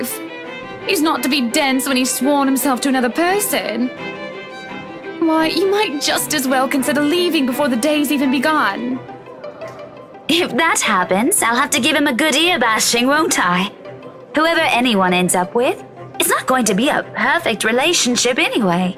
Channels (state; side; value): identical; both; correlation 1.00